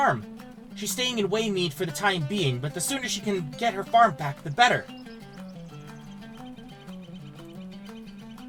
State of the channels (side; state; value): both; identical; correlation 1.00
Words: She's staying in Waymeet for the time being, but the sooner she can get her farm back, the better.